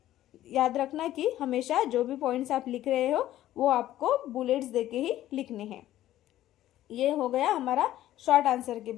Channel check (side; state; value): right; quieter; 13.6 dB